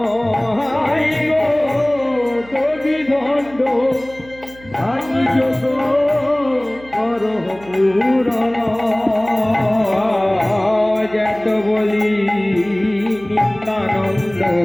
দধি ভাণ্ড ভাঙি যোগ করো পূরণ যেত বলি নিত্যানন্দ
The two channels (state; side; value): noise; right; hum, 22 dB below the sound